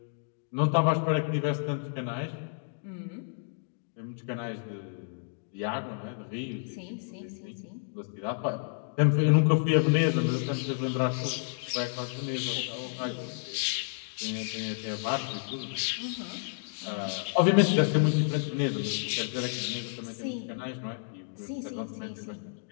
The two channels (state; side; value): silent; right; digital silence